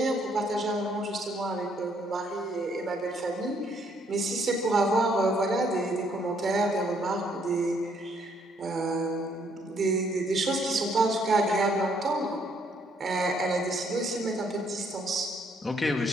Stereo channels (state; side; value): normal; both; correlation 0.68